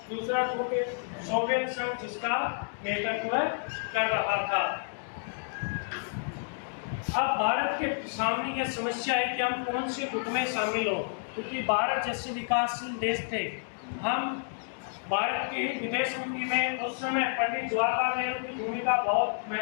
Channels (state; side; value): silent; right; digital silence